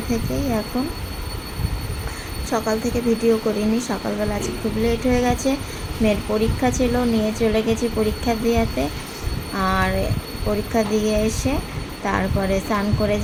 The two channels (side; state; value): both; identical; correlation 1.00